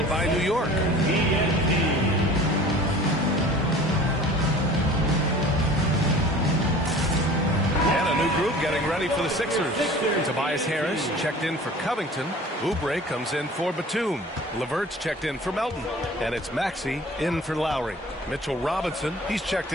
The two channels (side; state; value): both; normal; correlation 0.44